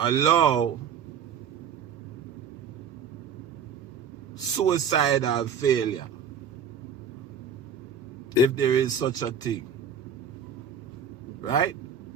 allow suicidal failure, if there is such a thing. Right?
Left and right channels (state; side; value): quieter; left; 6.4 dB